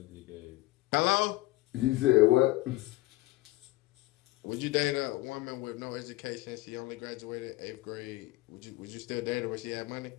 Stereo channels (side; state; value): right; quieter; 18.8 dB